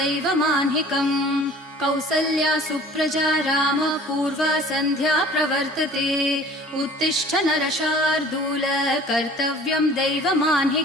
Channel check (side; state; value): both; normal; correlation 0.48